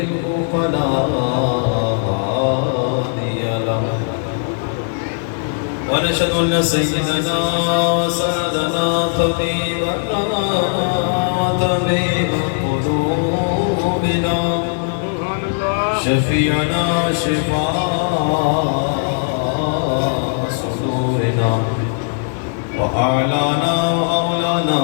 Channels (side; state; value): right; silent; digital silence